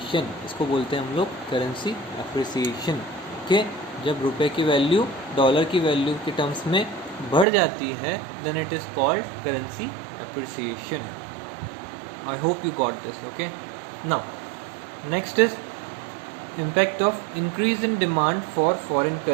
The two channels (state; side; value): drops out; left; at 7.5 s